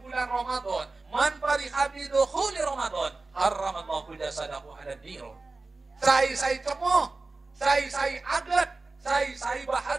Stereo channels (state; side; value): quieter; left; 3.5 dB